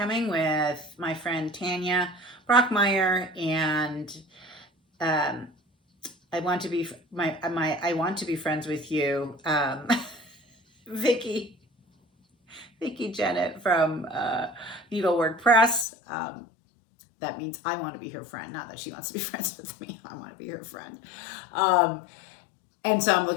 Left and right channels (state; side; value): drops out; right; at 15.9 s